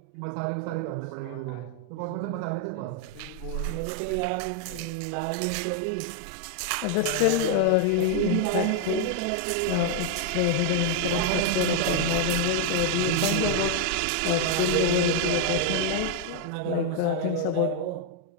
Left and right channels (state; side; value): different; both; correlation 0.00